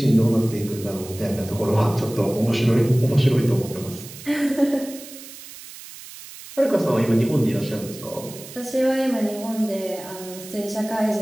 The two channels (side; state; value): right; noise; hiss, 15 dB below the sound